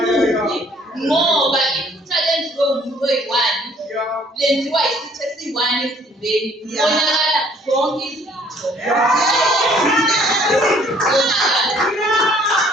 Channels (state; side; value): normal; both; correlation 0.60